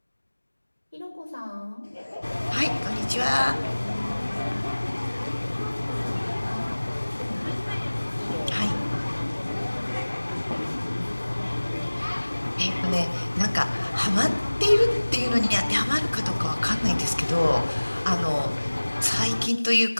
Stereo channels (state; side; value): inverted; both; correlation -1.00